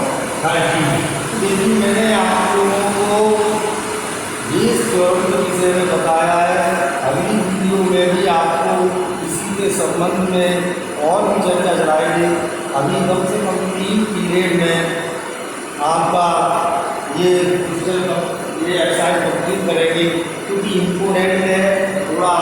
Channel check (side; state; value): both; identical; correlation 1.00